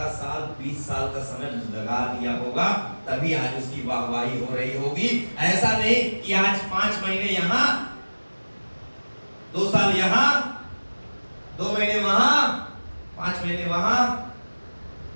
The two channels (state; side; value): inverted; both; correlation -1.00